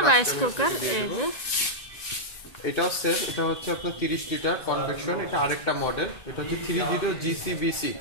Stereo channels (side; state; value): right; late; 1.9 ms